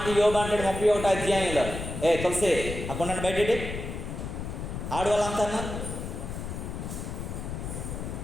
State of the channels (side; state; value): left; noise; rumble, 6 dB below the sound